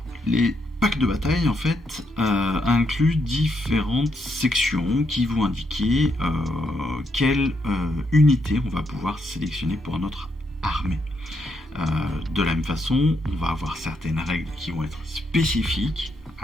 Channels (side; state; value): both; normal; correlation 0.78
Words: les packs de bataille, en fait, incluent différentes sections qui vont indiquer quelle unité on va pouvoir sélectionner pour notre armée. De la même façon, on va avoir certaines règles qui vont être spécifiques